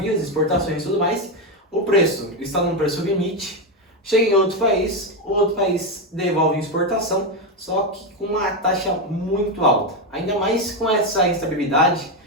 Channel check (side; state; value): both; normal; correlation 0.08